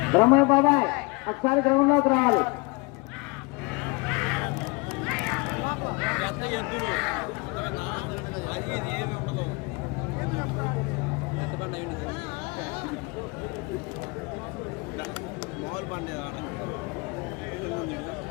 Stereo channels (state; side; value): quieter; right; 27.9 dB